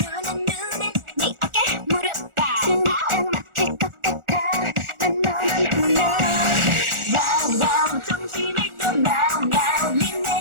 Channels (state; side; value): late; left; 1.4 ms